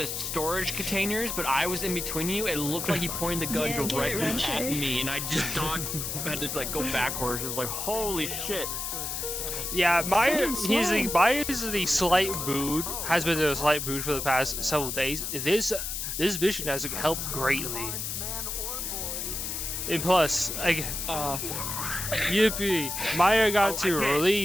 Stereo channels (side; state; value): left; noise; hiss, 4 dB below the sound